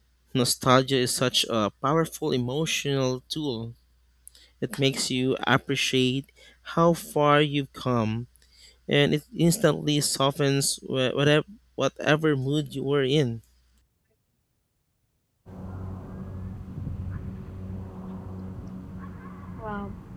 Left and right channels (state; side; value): identical; both; correlation 1.00